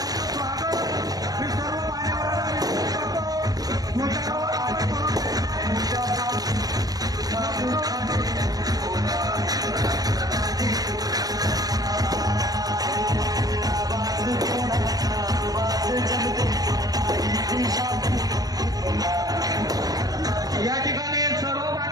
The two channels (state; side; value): late; left; 0.18 ms